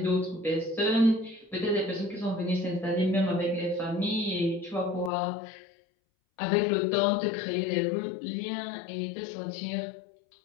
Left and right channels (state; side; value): drops out; right; at 5.1 s